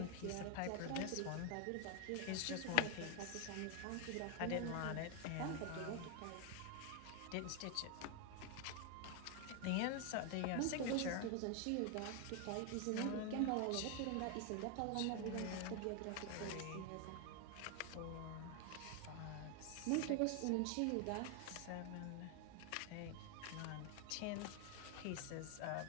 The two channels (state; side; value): different; both; correlation 0.01